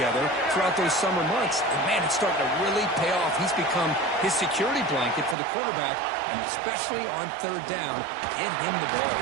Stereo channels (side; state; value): left; drops out; at 5.4 s